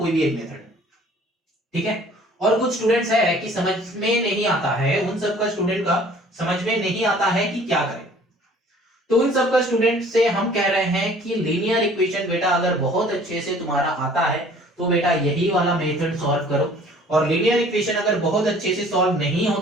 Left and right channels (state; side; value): normal; both; correlation 0.52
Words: भी एक मेथड, ठीक है। और कुछ स्टूडेंट्स है कि समझ में नहीं आता है, उन सबका स्टूडेंट का समझ में नहीं आता है कि क्या करें, तो उन सबका स्टूडेंट से हम कह रहे हैं कि लीनियर इक्वेशन बेटा अगर बहुत अच्छे से तुम्हारा आता है तो बेटा यही वाला मेथड सॉल्व करो, और लीनियर इक्वेशन अगर बहुत अच्छे से सॉल्व नहीं